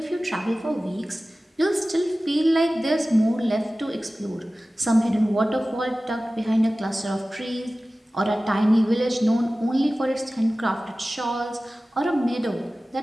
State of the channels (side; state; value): both; normal; correlation 0.97